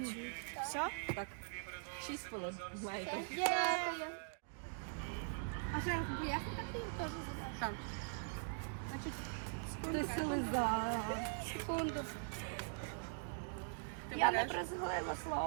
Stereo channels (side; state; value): left; silent; digital silence